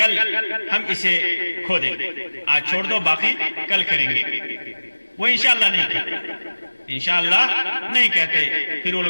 ہم اسے کھودیں گے، آج چھوڑ دو، باقی کل کریں گے۔ وہ انشاءاللہ نہیں کہتے، انشاءاللہ نہیں کہتے۔ پھر وہ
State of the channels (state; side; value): inverted; both; correlation -1.00